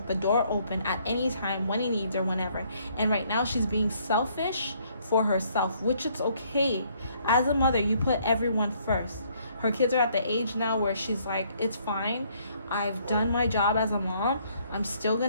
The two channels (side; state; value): both; inverted; correlation -0.66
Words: the door open at any time, when he needs her, whenever. And right now she's being selfish for herself, which it's okay. As a mother, you put everyone first. Her kids are at the age now where she's like, it's fine. I've done my job as a mom. I'm still